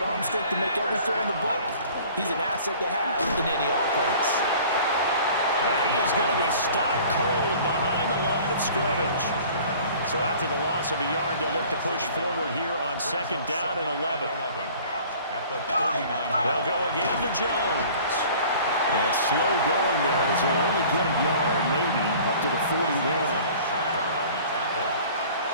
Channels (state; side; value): inverted; both; correlation -0.48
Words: arm strength to make every throw in the book, he's an asset to have in any offense. And he is going to be stopped cold behind the line of scrimmage. So after the loss of a yard, they'll look to push forward here on second down and 11. They'll go again to Jones. And slow going there as he'll only get a yard, maybe, up to the 41.